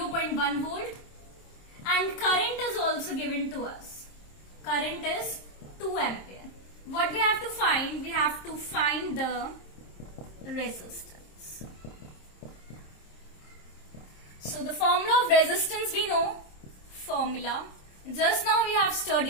volt and current is also given to us. Current is 2 ampere. What we have to find? We have to find the resistance. So the formula of resistance we know. Formula just now we have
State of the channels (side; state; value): right; late; 27 ms